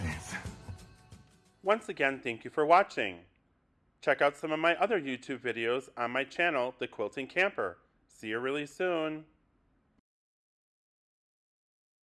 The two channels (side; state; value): both; identical; correlation 1.00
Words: Once again, thank you for watching. Check out some of my other YouTube videos on my channel, The Quilting Camper. See you really soon.